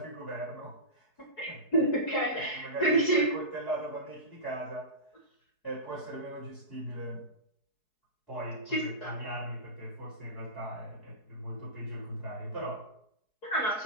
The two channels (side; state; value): right; late; 4.7 ms